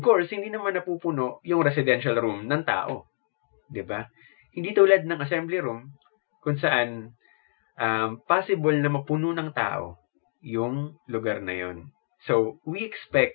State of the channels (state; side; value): silent; right; digital silence